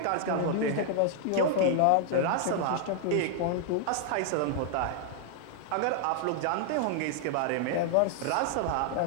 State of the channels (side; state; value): both; different; correlation 0.00